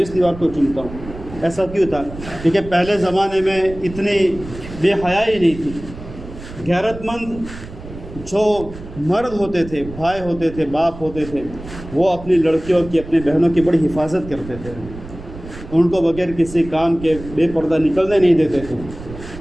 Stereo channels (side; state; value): right; noise; rumble, 14 dB below the sound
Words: اس دیوار کو چومتا ہوں۔ ایسا کیوں تھا؟ کیونکہ پہلے زمانے میں اتنی بے حیائی نہیں تھی۔ غیرت مند جو مرد ہوتے تھے، بھائی ہوتے تھے، باپ ہوتے تھے، وہ اپنی لڑکیوں کی، اپنی بہنوں کی بڑی حفاظت کرتے تھے، ان کو بغیر کسی کام کے بے پردہ نکلنے نہیں دیتے تھے۔